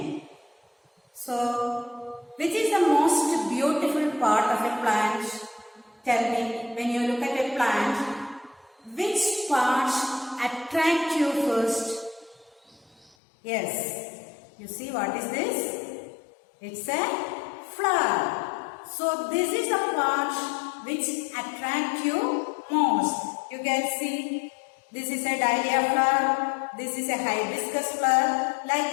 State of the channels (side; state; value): right; drops out; at 13.1 s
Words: So, which is the most beautiful part of a plant? Tell me, when you look at a plant, which parts attract you first? Yes. You see what is this? It's a flower. So this is the part which attract you most. You can see this is a dahlia flower, this is a hibiscus flower. Like